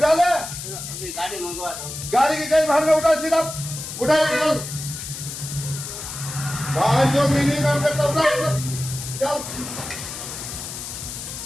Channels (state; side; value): noise; left; hiss, 8 dB below the sound